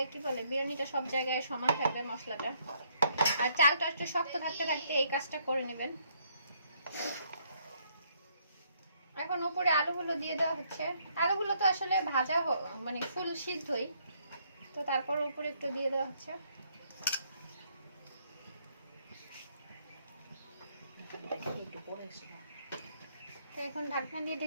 কি বলে বিরিয়ানিটা সব জায়গায় সমান থাকবে মশলাটা। আর চালটা একটু শক্ত থাকতে থাকতে এই কাজটা করে নেবেন। এখন উপরে আলুগুলো দিয়ে দেওয়া হচ্ছে। আলুগুলো তো আসলে ভাজা মানে ফুল সিদ্ধই, তো তারপর উপরে একটু দিয়ে দেওয়া হচ্ছে। তো এখন ঢাকনা দিয়ে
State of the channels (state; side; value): inverted; both; correlation -0.70